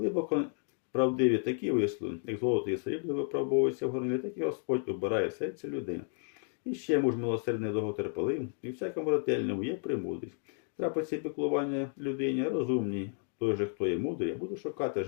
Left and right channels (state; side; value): silent; right; 56 dB below the other